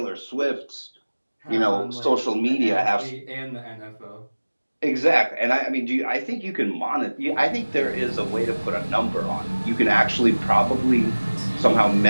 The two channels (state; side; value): inverted; both; correlation -1.00